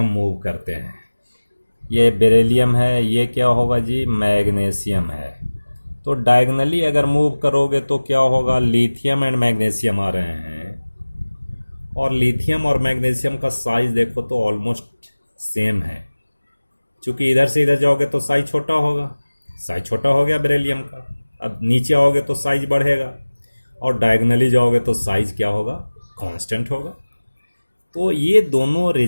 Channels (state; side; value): inverted; both; correlation -1.00